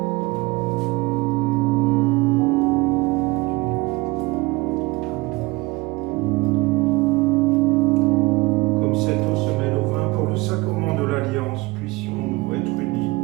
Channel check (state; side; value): quieter; left; 22.8 dB